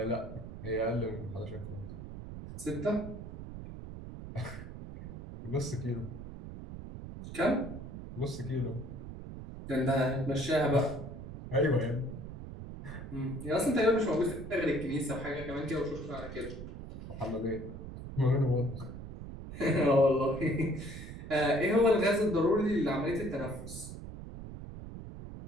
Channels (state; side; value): noise; right; rumble, 10 dB below the sound